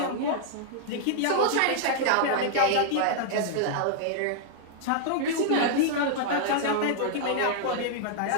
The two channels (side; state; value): both; different; correlation -0.01